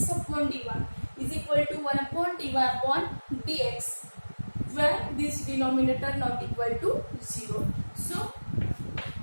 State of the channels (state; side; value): inverted; both; correlation -1.00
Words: upon dy is equal to 1 upon dy upon dx, where this denominator not equal to 0. So